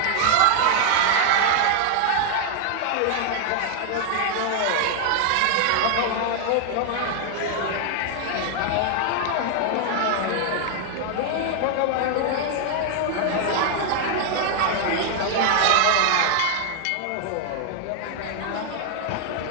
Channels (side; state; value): both; different; correlation 0.00